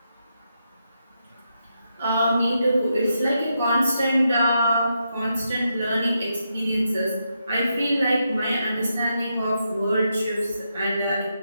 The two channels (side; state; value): both; inverted; correlation -0.83